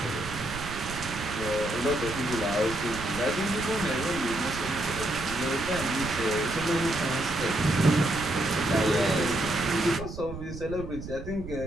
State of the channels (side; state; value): right; noise; rumble, 10 dB below the sound